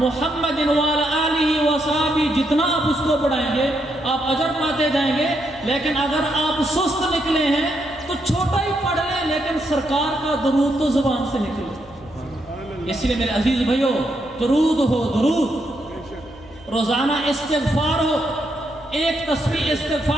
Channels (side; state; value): both; normal; correlation 0.79